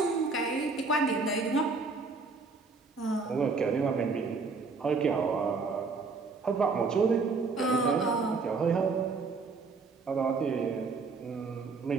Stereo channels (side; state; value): left; quieter; 4.4 dB